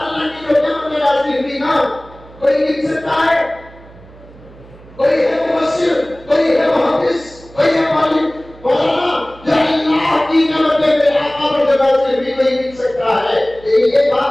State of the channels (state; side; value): noise; right; hum, 22 dB below the sound